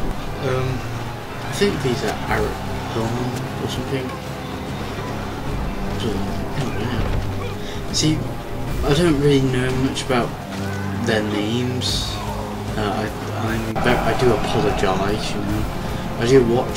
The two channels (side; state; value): both; identical; correlation 1.00